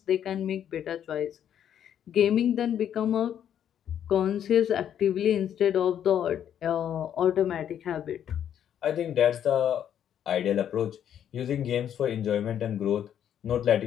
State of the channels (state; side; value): quieter; right; 9.7 dB